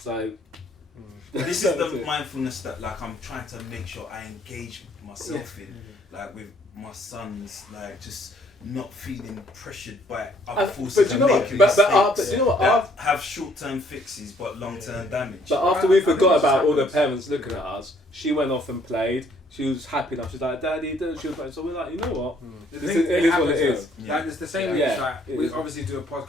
This is the mindfulness that like I'm trying to make sure I engage myself in, like with my sons, like just not feeling pressured by other forces and making mistakes that have short-term fixes but long-term damage. But after we forgot about all the parents looking at us, she went off and played. She was happy enough. She's like, Daddy, she was like, so we're like, you know what? It is what it is. Yeah. Like, it's the same way. Like, we obviously do a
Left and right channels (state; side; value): normal; both; correlation 0.64